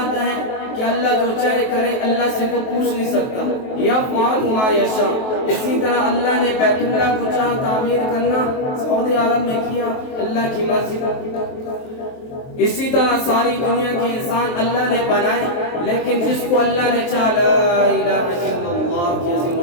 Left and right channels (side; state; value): right; late; 23 ms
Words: ہے کہ اللہ جو چاہے کرے، اللہ سے کوئی پوچھ نہیں سکتا۔ یفعل ما یشاء۔ اسی طرح اللہ نے بیت اللہ کو چاہا تعمیر کرنا، سعودی عرب میں کیا، اللہ کی مرضی۔ اسی طرح ساری دنیا کے انسان اللہ نے بنائے، لیکن جس کو اللہ نے چاہا لا الہ الا اللہ کی عظیم